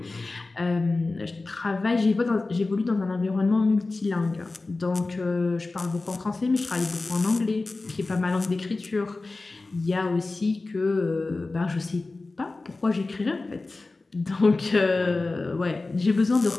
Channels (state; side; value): quieter; right; 3.4 dB